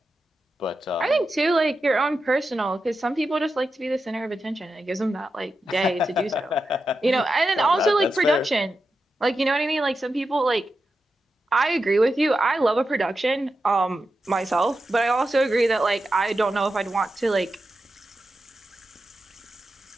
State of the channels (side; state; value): both; normal; correlation 0.89